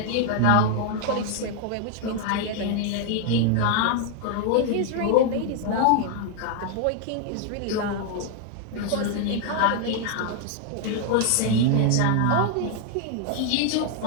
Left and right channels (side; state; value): both; different; correlation 0.00